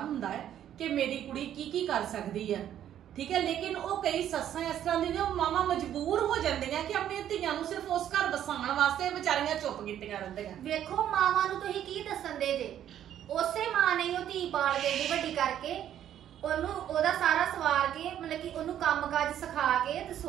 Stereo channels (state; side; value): quieter; left; 10.7 dB